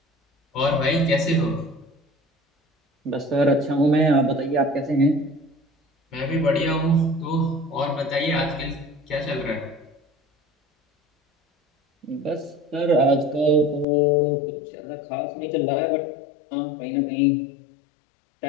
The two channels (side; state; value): right; drops out; at 13.9 s